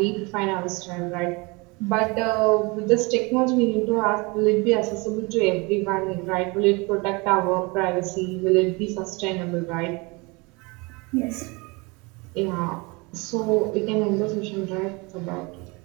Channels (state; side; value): quieter; left; 27.2 dB